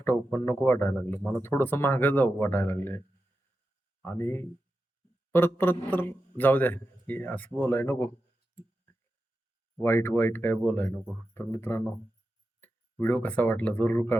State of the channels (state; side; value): normal; both; correlation 0.90